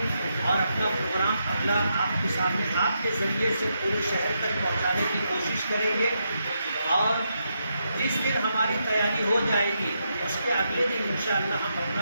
और अपना प्रोग्राम अगला आपके सामने आपके ज़रिए से पूरे शहर तक पहुंचाने की कोशिश करेंगे और जिस दिन हमारी तैयारी हो जाएगी उसके अगले दिन इंशाअल्लाह हम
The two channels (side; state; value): both; inverted; correlation -0.82